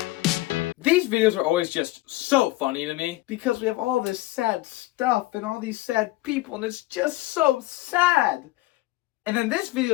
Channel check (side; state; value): right; quieter; 18.5 dB